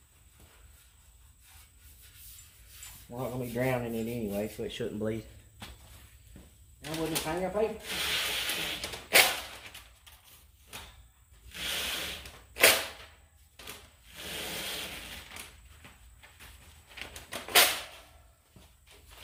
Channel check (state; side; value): identical; both; correlation 1.00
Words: We're not going to be drowning in it anyway, so it shouldn't bleed. Now we'll just hang our paper.